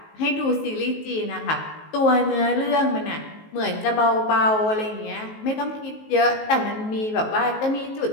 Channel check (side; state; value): right; late; 19 ms